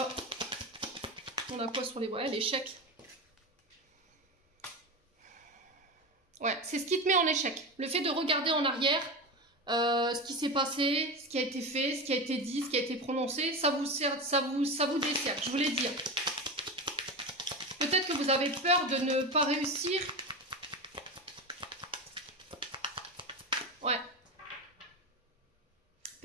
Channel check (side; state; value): both; normal; correlation 0.22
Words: On a quoi sur les voyages? L'échec. Ouais, c'est ce qui te met en échec. Le fait de regarder en arrière, ce qui s'est passé, ce qui a été fait, ce qui a été dit, ce qui a été prononcé, ça vous dessert, je vous l'ai dit. Peut-être que vous avez peur de ne pas réussir. Ouais.